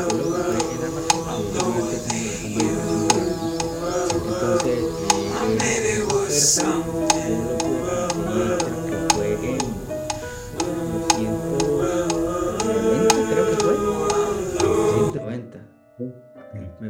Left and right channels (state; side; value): identical; both; correlation 1.00